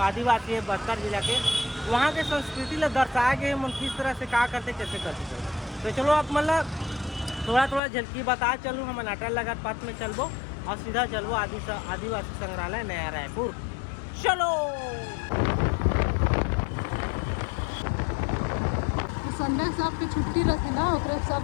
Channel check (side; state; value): right; drops out; at 7.8 s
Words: है बस्तर जिला के वहाँ के संस्कृति ला दर्शाए गए हम किस तरह से क्या करते कैसे करते। तो चलो आप मतलब थोड़ा थोड़ा झलकी बता चलूँ। हम नाटा लगा पथ में चलबो और सीधा चलबो आदिवासी संग्रहालय नया रायपुर। चलो संडे से आपकी छुट्टी रखी ना ओकरे